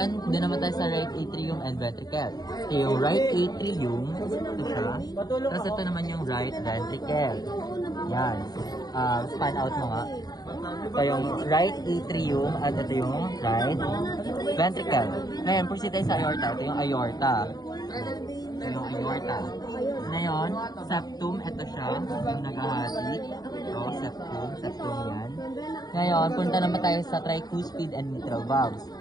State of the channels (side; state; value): right; late; 0.19 ms